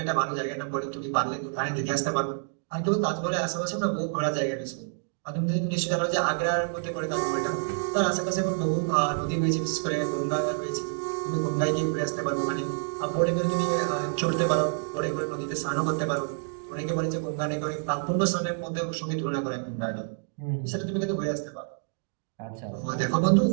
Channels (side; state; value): left; silent; 59 dB below the other